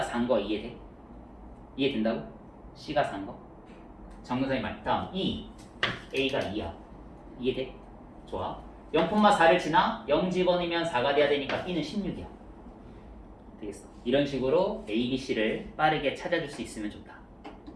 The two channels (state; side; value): identical; both; correlation 1.00